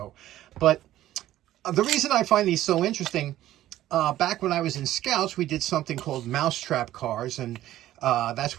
but the reason I find these so interesting, back when I was in Scouts, we did something called mousetrap cars, and that's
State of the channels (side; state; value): left; quieter; 13.9 dB